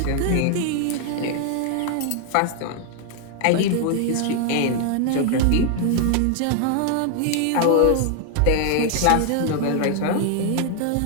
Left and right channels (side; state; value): both; different; correlation 0.00